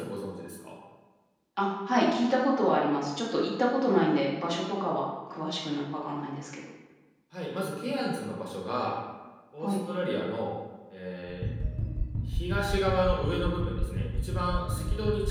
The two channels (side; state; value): both; identical; correlation 1.00